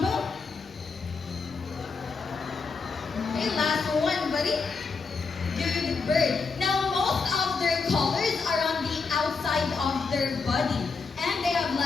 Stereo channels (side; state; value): right; quieter; 4.7 dB